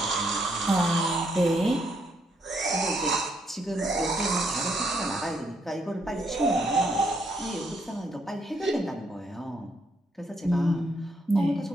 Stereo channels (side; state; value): both; normal; correlation 0.74